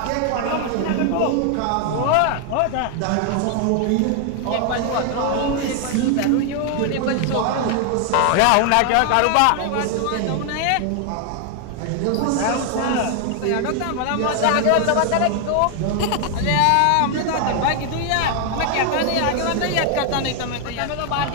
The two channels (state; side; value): different; both; correlation 0.00